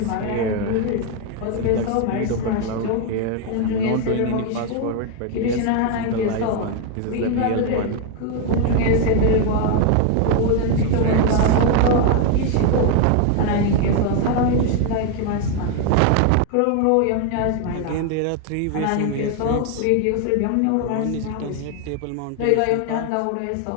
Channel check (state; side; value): different; both; correlation 0.01